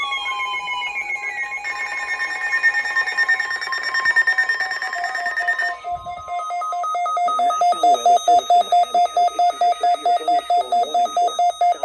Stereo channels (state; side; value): identical; both; correlation 1.00